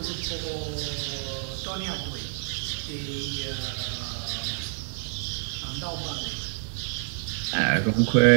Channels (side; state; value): left; silent; digital silence